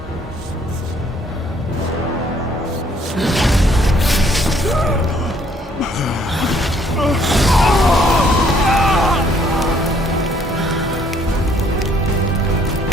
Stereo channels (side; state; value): both; normal; correlation 0.64